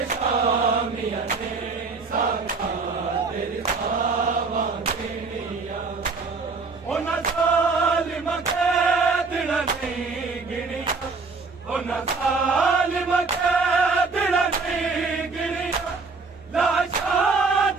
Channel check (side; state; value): left; quieter; 4.3 dB